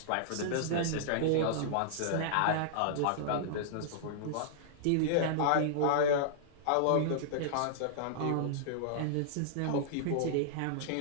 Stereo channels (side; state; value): both; different; correlation -0.02